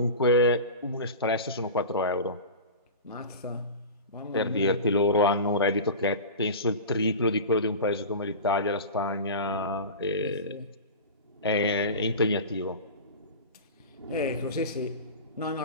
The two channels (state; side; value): inverted; both; correlation -0.30